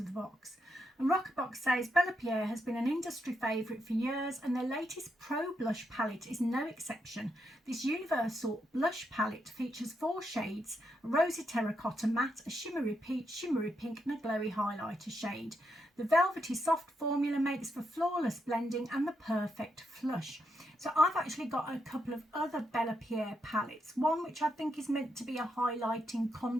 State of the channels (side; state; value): both; normal; correlation 0.81